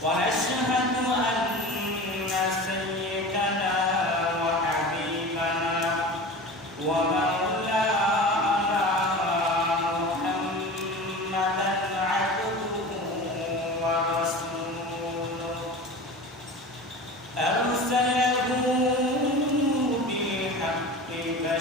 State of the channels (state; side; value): normal; both; correlation 0.34